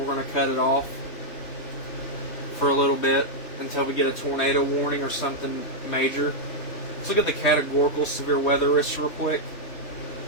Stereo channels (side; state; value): right; late; 3.0 ms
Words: going to cut it off for a little bit until we get a tornado warning or something major. Let's look at the categorical severe weather risk real quick.